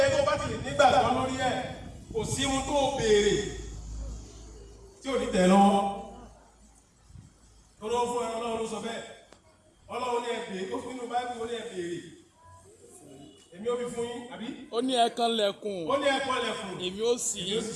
tó bá ti lè nígbàgbọ́ lórí ẹ̀, kò sí ohun tó béèrè tí ò ní tẹ̀ lọ́wọ́. Ọlọ́run fún ẹran Ọlọ́run ló sọ bẹ́ẹ̀. Ọlọ́run ní ẹ̀bẹ̀ẹ́, ó fún inú Báíbù ó ní ẹ̀bẹ̀ẹ́. Èmi ó fi fún yín, àbí? Ó ní ẹ kanlẹ̀kùn. Ó ní ẹ kanlẹ̀kùn. Èmi ó ṣí.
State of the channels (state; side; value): identical; both; correlation 1.00